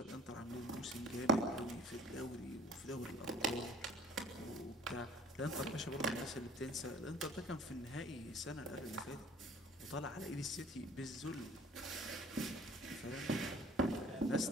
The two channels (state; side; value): normal; both; correlation 0.50